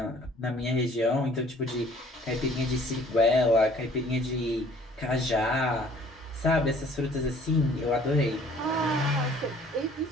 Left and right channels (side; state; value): both; normal; correlation 0.55